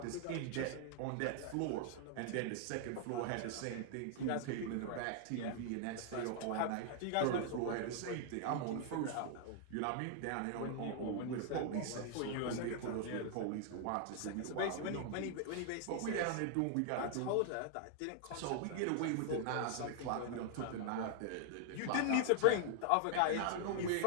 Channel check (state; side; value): different; both; correlation 0.00